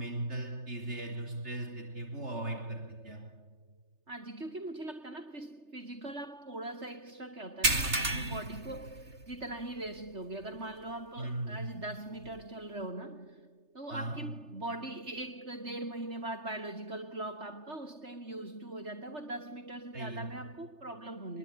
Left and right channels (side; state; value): left; late; 3.3 ms